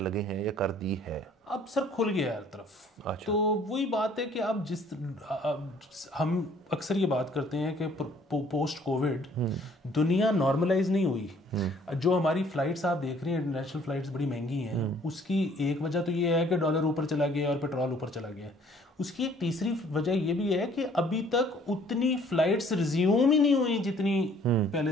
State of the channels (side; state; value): both; normal; correlation 0.58